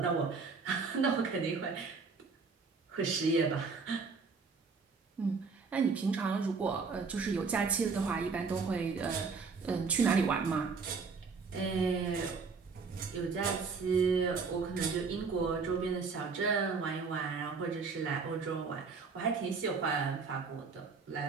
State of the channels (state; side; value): quieter; left; 4.8 dB